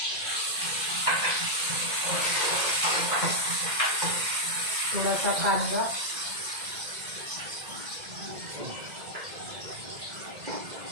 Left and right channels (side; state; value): left; late; 2.0 ms